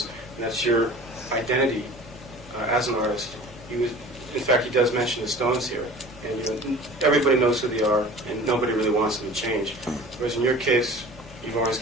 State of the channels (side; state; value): both; normal; correlation 0.42